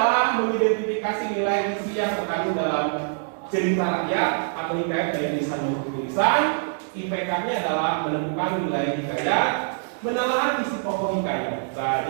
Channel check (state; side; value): silent; left; digital silence